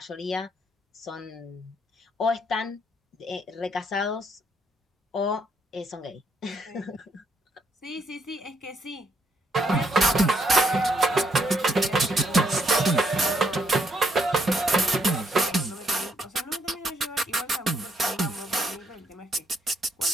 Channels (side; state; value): both; normal; correlation 0.73